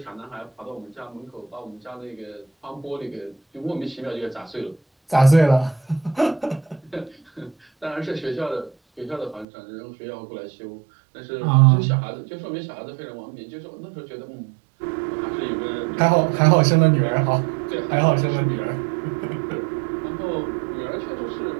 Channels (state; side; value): drops out; left; at 9.5 s